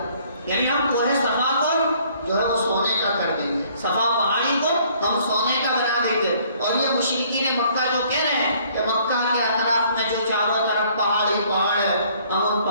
یعنی ہم کوہ صفا کو جو ہے وہ سونے کا کر دیں گے، صفا پہاڑی کو ہم سونے کا بنا دیں گے۔ اور یہ مشرکین مکہ جو کہہ رہے ہیں کہ مکہ کے اطراف میں جو چاروں طرف پہاڑی پہاڑ ہے ہم ان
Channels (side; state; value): both; inverted; correlation -0.60